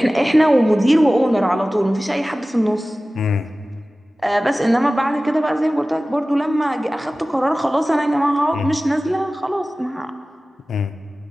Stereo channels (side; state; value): both; normal; correlation 0.97